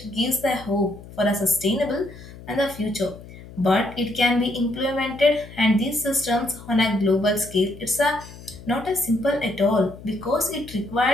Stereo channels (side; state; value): left; noise; hum, 17 dB below the sound